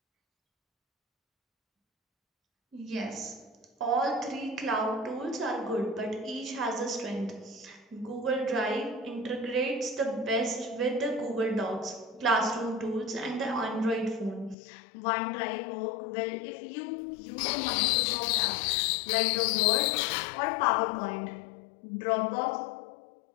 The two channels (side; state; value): right; drops out; at 14.6 s